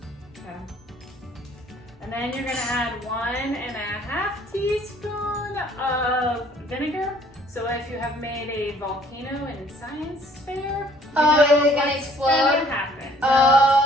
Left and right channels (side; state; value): both; normal; correlation 0.58